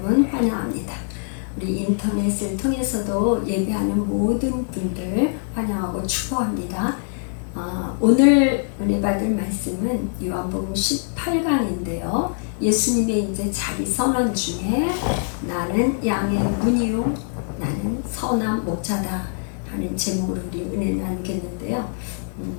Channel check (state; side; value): silent; right; 63 dB below the other